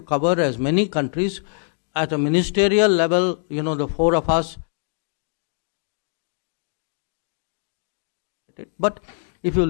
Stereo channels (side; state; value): right; silent; digital silence